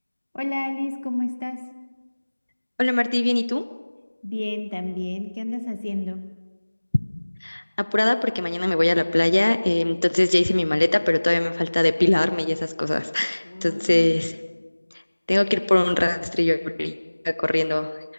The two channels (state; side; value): inverted; both; correlation -1.00